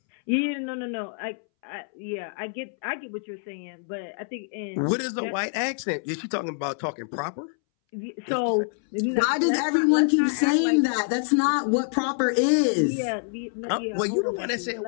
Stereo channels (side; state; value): right; silent; 61 dB below the other